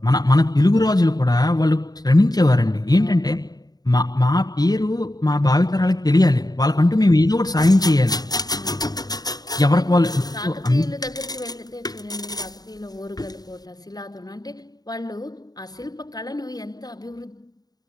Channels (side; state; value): right; late; 0.19 ms